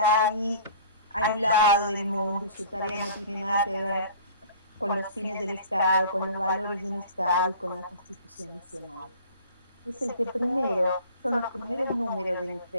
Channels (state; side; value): inverted; both; correlation -0.46